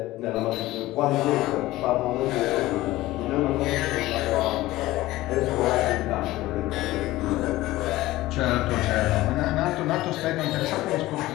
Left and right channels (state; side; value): quieter; right; 17.4 dB